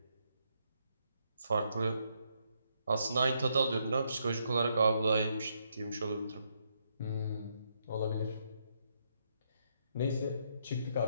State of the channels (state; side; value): inverted; both; correlation -0.76